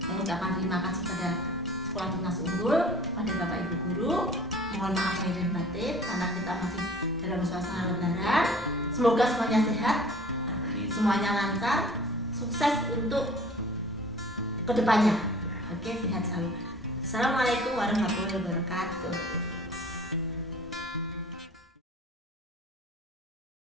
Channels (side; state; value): both; normal; correlation 0.48